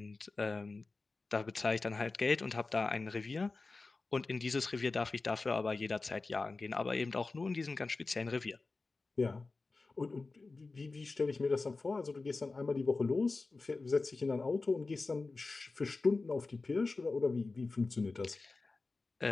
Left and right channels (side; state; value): right; quieter; 3.7 dB